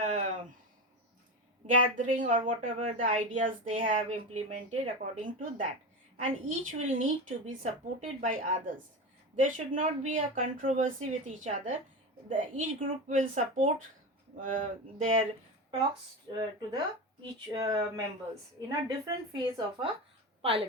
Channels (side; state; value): both; normal; correlation 0.22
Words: gathering or whatever the ideas they have implemented according to that, and each will need to be supported by others. There should not be a controversy with each other. Each group will support their talks to the each members in a different phase of a